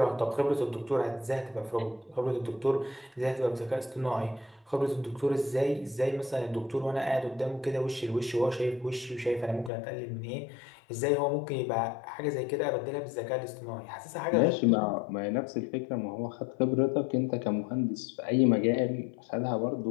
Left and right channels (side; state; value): right; drops out; at 9.7 s